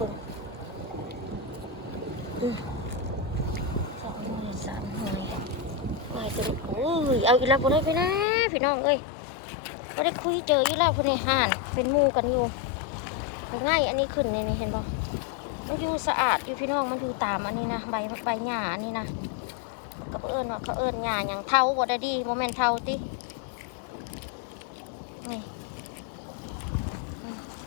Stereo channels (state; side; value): drops out; right; at 8.2 s